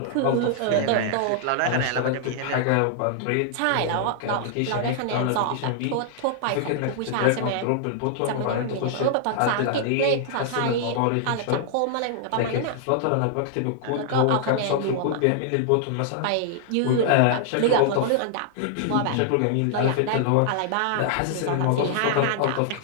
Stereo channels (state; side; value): different; both; correlation -0.01